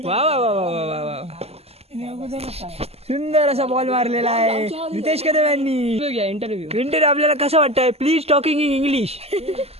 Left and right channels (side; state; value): left; late; 0.29 ms